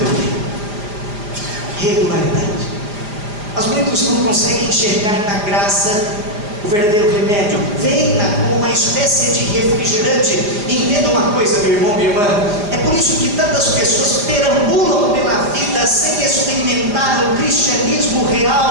eu quero. Regularidade. Mas muitos não conseguem enxergar na graça o verdadeiro remédio. Veem-na como uma espécie de refrigerante. E entenda uma coisa, meu irmão, minha irmã. É por isso que tantas pessoas perambulam pela vida sem experimentar o cristianismo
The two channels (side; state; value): left; late; 4.9 ms